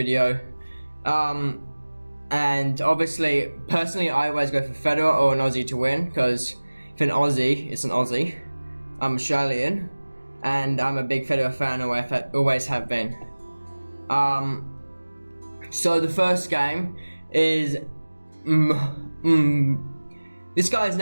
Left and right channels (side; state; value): both; inverted; correlation -1.00